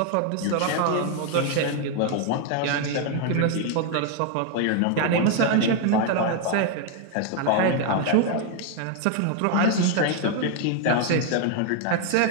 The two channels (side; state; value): both; different; correlation 0.00